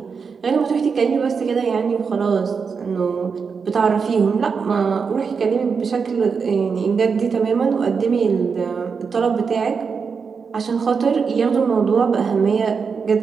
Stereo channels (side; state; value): left; quieter; 5.6 dB